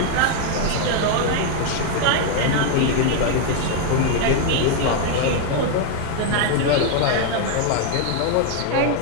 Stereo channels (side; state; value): both; different; correlation 0.00